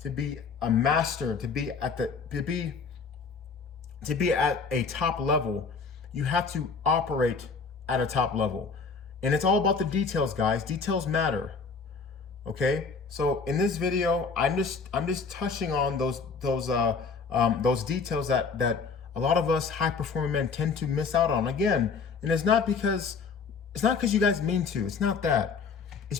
a master, to be at a top level, you have to operate at a top level. And it's all about the details, guys. Details matter. Okay? So in this video, I'm just touching on those details that a lot of us high performing men tend to miss out on. Again, and it's not because you guys mean to. It's not that. It's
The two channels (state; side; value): quieter; right; 5.1 dB